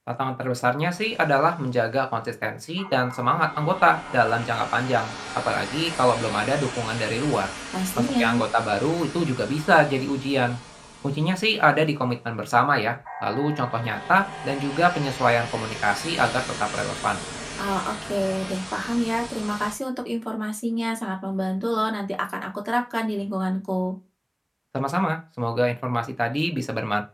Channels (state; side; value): identical; both; correlation 1.00